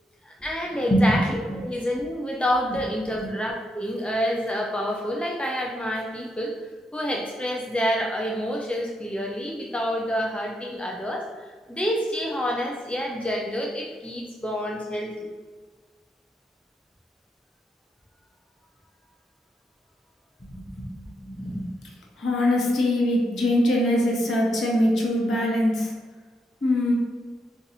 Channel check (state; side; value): normal; both; correlation 0.80